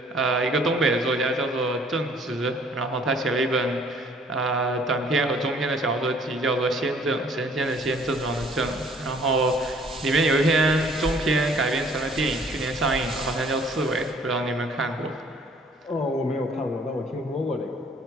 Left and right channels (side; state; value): both; normal; correlation 0.58